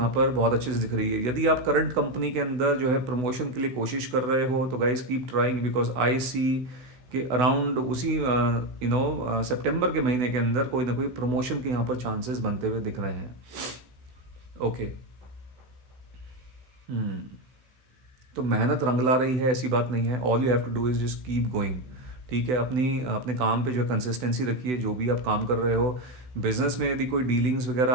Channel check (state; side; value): late; left; 16 ms